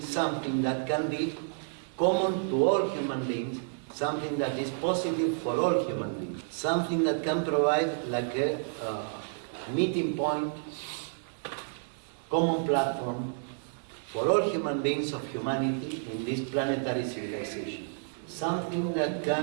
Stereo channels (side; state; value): left; silent; 58 dB below the other